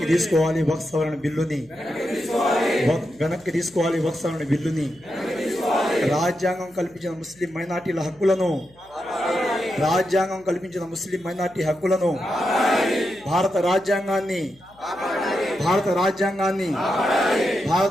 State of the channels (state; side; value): noise; left; hum, 29 dB below the sound